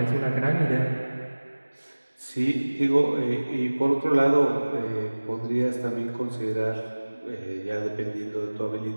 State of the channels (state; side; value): inverted; both; correlation -1.00